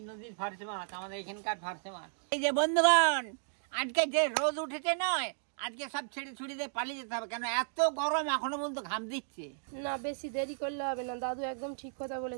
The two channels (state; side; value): silent; left; digital silence